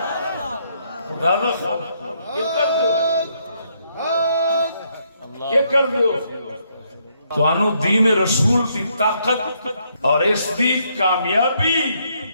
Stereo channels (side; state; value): both; inverted; correlation -0.73